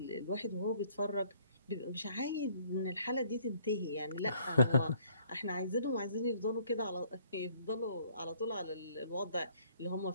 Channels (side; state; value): both; inverted; correlation -0.62